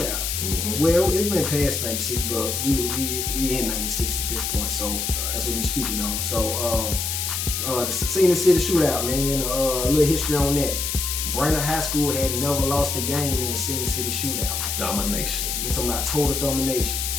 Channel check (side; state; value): left; noise; hiss, 2 dB below the sound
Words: Well, it went past '96, but we in '96 at this point, so that's what we speaking on. So the Scenic City Shootout, man, a little history on that. Brainerd High School had never lost a game in the Scenic City Shootout, man. Domination. I'm talking about total domination.